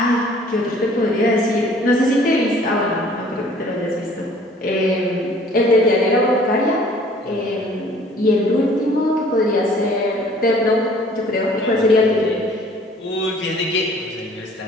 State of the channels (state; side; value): normal; both; correlation 0.54